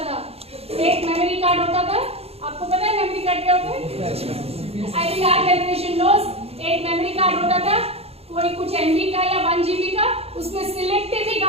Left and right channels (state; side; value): late; left; 0.29 ms